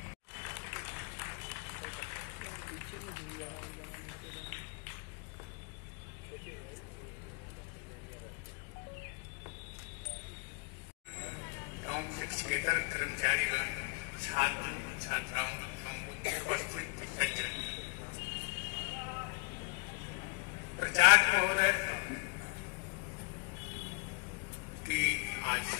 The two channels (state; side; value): quieter; right; 31.4 dB